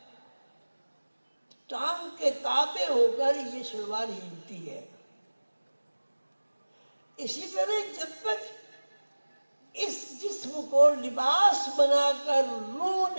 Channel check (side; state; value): both; inverted; correlation -1.00